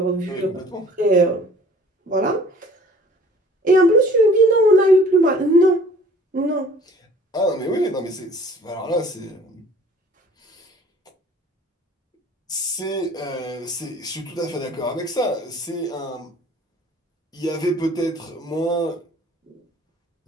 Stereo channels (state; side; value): normal; both; correlation 0.51